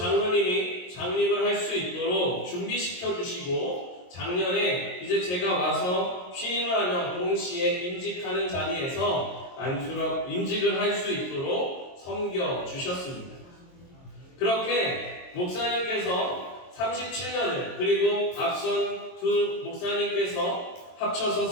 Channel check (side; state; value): right; late; 22 ms